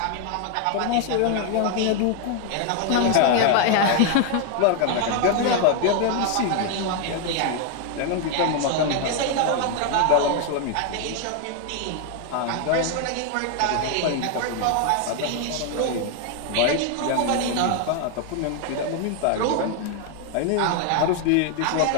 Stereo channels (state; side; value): different; both; correlation 0.01